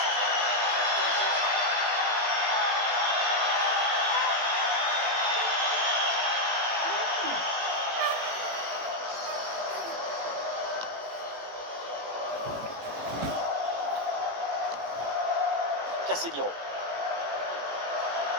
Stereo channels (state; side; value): late; left; 18 ms